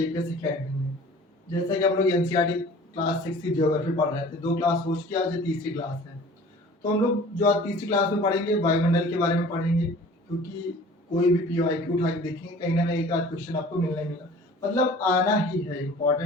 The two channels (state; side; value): normal; both; correlation 0.46